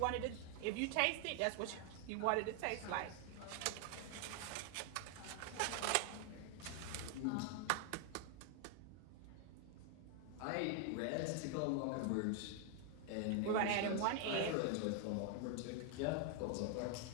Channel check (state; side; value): different; both; correlation 0.00